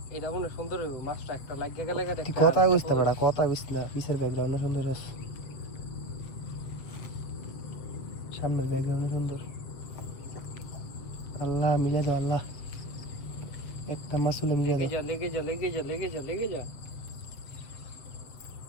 এটা মনে সুন্দর হইব মাছটা একটা লাগিয়ে গেলে তুই কথা বুঝতে পারা, কথা বুঝ না। পিছের ব্যাকগ্রাউন্ড সুন্দর আছে, সামনের ব্যাকগ্রাউন্ড সুন্দর। আল্লাহ মিলে দাও আল্লাহ, একটা মাসুলে মিলে দাও। লেগে যা লেগে যা লেগে যা লেগে যা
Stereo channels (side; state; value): right; late; 7.5 ms